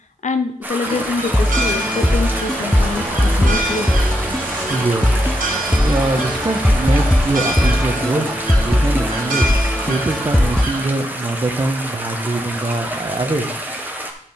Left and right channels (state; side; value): normal; both; correlation 0.82